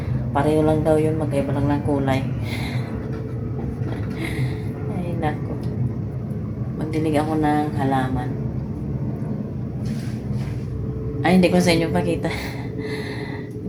Pareho lang daw yun, magkaiba lang ng kulay. Ay, nako. Magdilig ako ng halaman. Ay, hindi ko sa inyo pakita.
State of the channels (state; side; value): identical; both; correlation 1.00